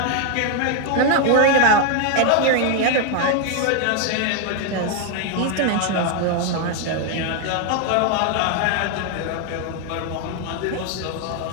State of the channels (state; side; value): different; both; correlation 0.01